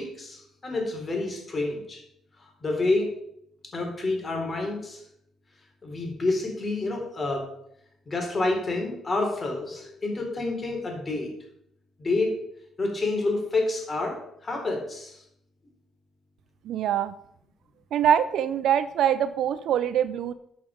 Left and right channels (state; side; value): normal; both; correlation 0.71